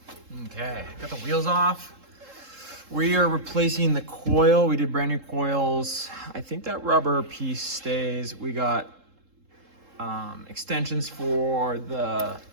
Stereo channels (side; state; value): left; late; 3.7 ms